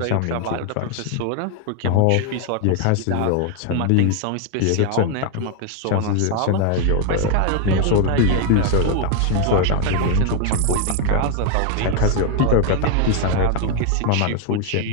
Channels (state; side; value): different; both; correlation 0.00